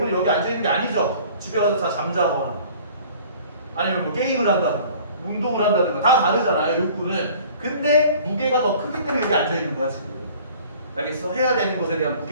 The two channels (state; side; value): inverted; both; correlation -0.50